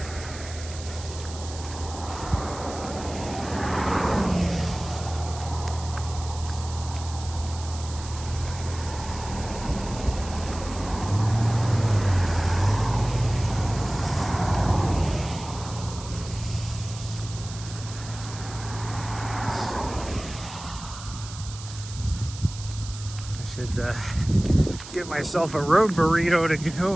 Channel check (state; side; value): noise; right; hiss, 13 dB below the sound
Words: Should get myself a road burrito to